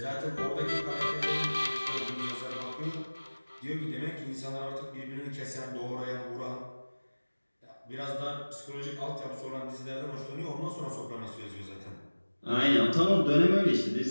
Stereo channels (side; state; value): both; inverted; correlation -1.00